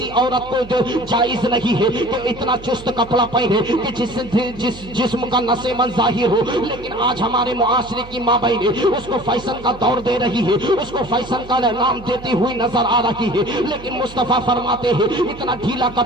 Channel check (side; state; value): right; noise; hum, 17 dB below the sound